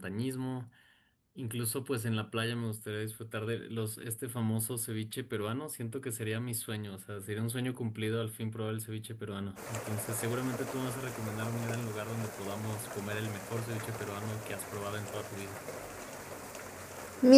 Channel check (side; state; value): both; identical; correlation 1.00